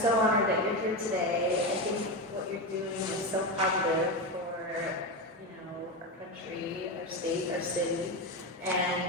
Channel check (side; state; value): both; normal; correlation 0.16